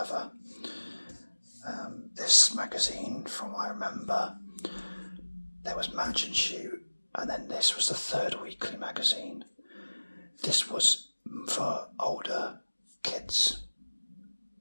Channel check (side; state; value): both; inverted; correlation -1.00